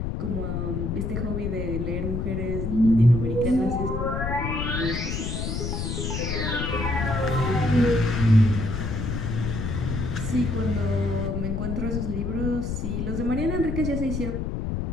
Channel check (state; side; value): noise; left; rumble, 2 dB below the sound